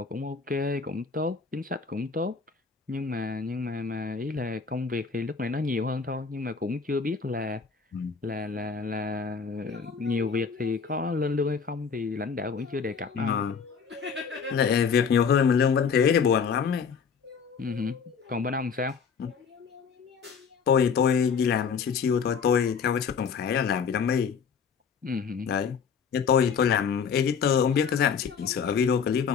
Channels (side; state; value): right; quieter; 6.1 dB